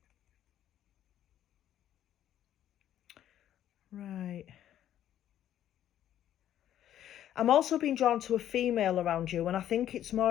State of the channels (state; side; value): quieter; right; 11.4 dB